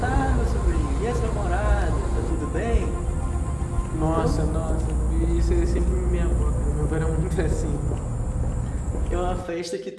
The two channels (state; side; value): identical; both; correlation 1.00